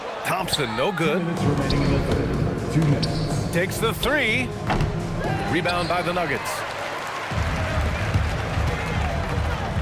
Thompson, no good. 2 minutes remaining in the third. 2 minutes. Takes the 3. Rebound by the Nuggets.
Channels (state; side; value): identical; both; correlation 1.00